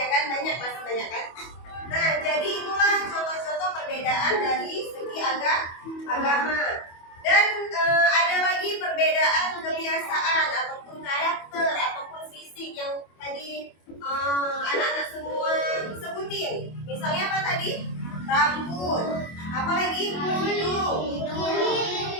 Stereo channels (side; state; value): right; late; 25 ms